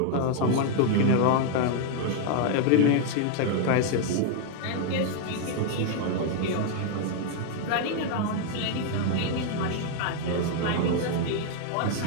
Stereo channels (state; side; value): different; both; correlation 0.00